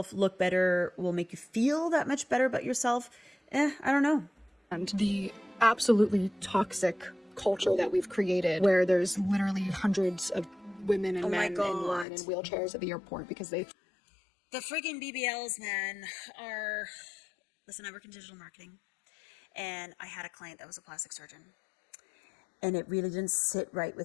look better will make you feel that much better about yourself, I don't know. and the absolutely toxic culture that we've created, where there's literally hundreds of women and men in line in wheelchairs at the airport because they... The friggin' BBLs, man, are... Listen, I work in digital marketing, and I had a client that was a plastic surgeon, and it really didn't sit right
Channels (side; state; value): right; drops out; at 12.1 s